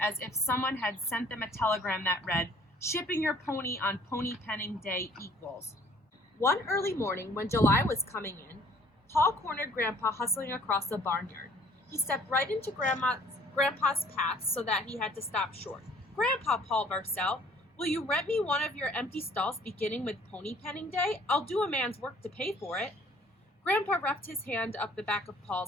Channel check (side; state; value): both; normal; correlation 0.57